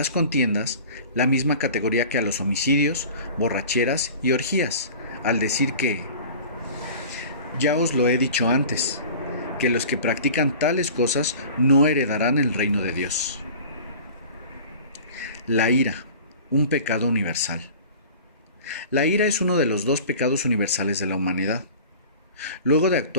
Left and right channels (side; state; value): both; inverted; correlation -0.41